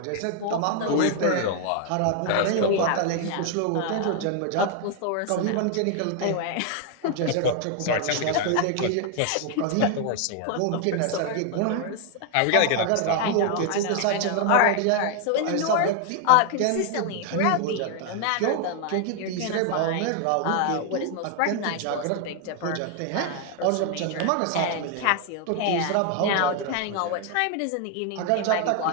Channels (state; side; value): different; both; correlation 0.00